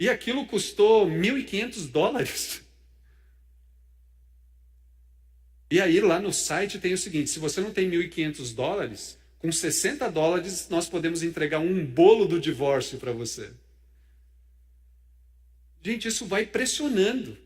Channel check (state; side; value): identical; both; correlation 1.00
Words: aquilo custou $1.500. E aí lá no site tem o seguinte: se você não tem $1.500, com $60 nós podemos entregar um bolo do divórcio para você. Gente, isso vai pressionando.